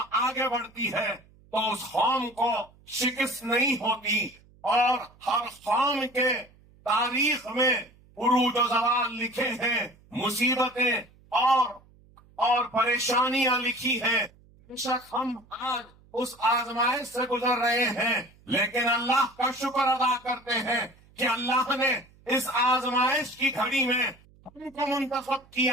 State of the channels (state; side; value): noise; right; hum, 28 dB below the sound